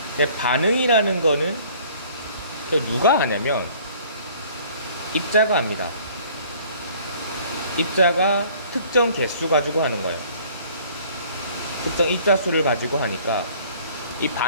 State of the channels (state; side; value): inverted; both; correlation -0.54